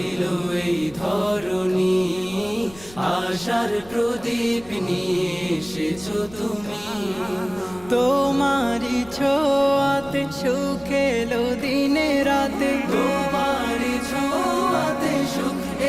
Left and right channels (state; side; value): noise; left; rumble, 22 dB below the sound